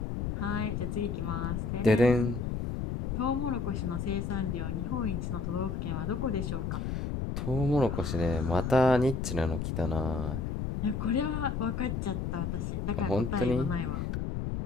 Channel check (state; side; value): noise; left; rumble, 2 dB below the sound